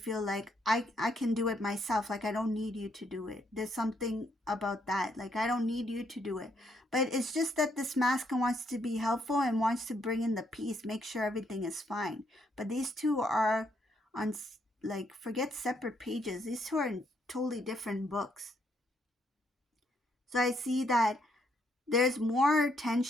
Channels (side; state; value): both; normal; correlation 0.73